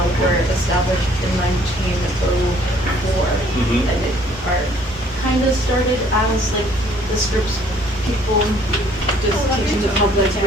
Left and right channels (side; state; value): both; normal; correlation 0.60